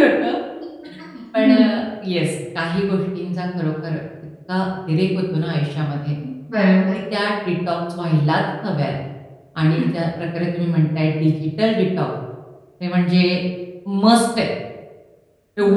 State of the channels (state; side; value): identical; both; correlation 1.00